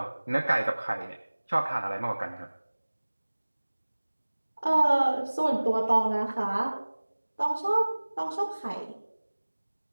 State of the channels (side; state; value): both; inverted; correlation -1.00